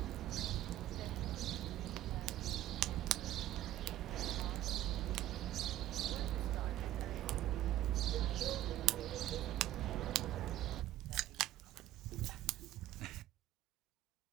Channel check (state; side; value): quieter; left; 13.9 dB